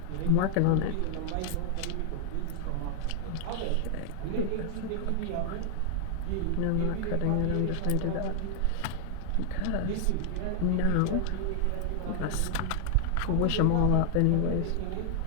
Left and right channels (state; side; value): different; both; correlation 0.00